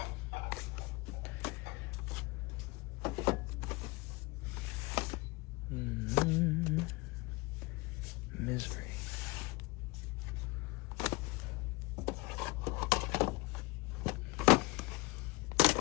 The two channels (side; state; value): right; quieter; 24.2 dB